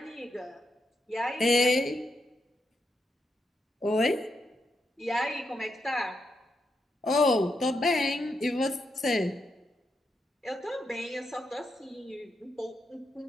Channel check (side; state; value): both; normal; correlation 0.83